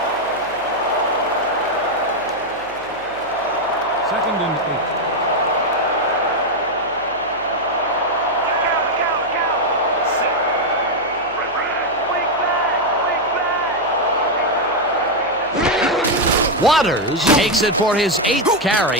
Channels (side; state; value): left; noise; hum, 25 dB below the sound